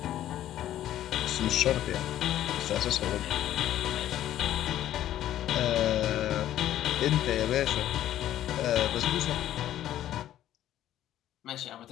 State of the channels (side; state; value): right; quieter; 12.4 dB